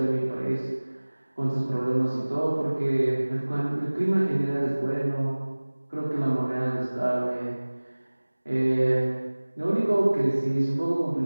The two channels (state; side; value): inverted; both; correlation -1.00